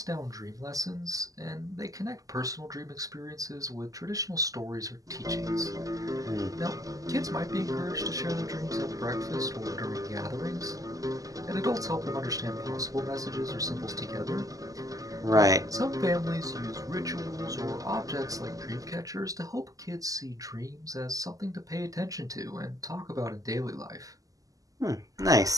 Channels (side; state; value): left; late; 0.17 ms